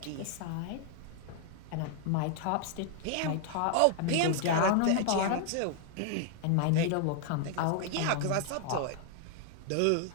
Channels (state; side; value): different; both; correlation 0.00